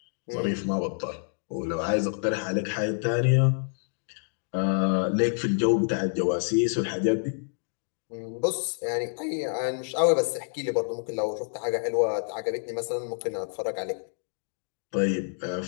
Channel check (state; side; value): silent; right; digital silence